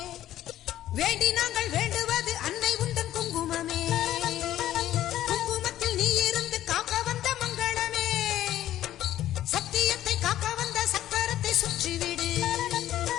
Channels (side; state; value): right; quieter; 13.0 dB